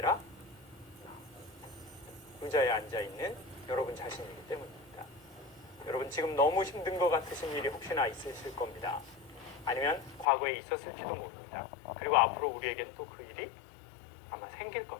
의자에 앉아 있는 여러분 자신이기 때문입니다. 여러분 지금 너무 힘든 것 같으신 일이 혹시나 있으실 겁니다. 아니면 과거에 있었을지도 모릅니다. 그리고 앞으로 우리에겐 또 그 일이 아마 생길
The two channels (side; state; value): right; drops out; at 10.2 s